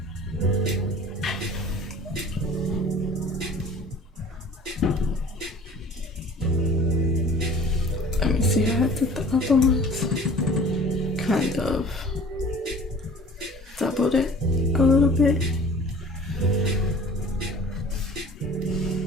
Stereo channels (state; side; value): normal; both; correlation 0.47